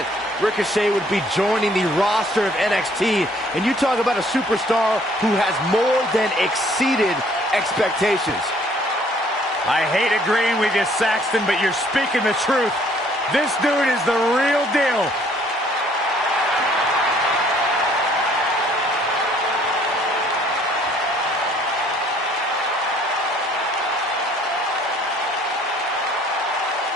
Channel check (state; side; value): normal; both; correlation 0.60